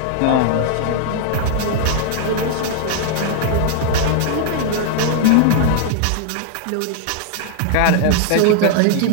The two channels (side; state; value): both; different; correlation 0.00